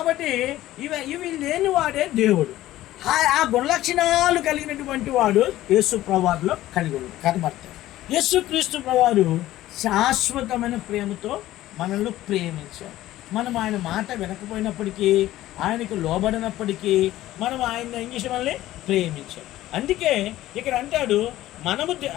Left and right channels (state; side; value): quieter; right; 15.0 dB